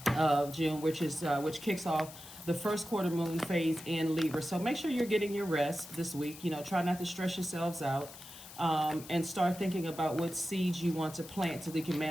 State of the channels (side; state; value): left; noise; hiss, 16 dB below the sound